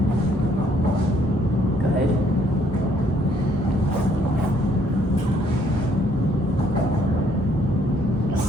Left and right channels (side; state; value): both; normal; correlation 0.66